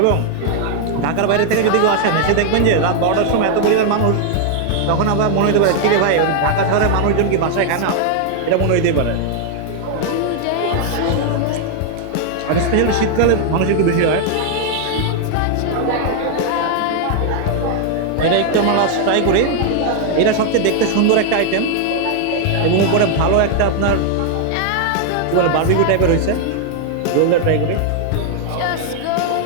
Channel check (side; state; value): both; different; correlation 0.00